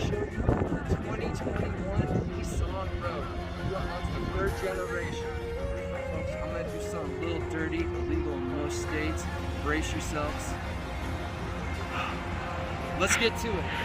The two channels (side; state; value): both; identical; correlation 1.00